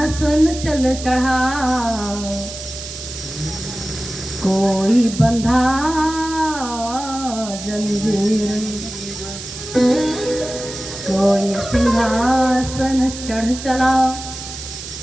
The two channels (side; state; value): right; noise; hiss, 10 dB below the sound